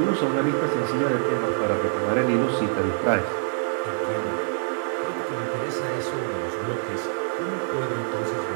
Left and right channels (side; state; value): left; silent; 62 dB below the other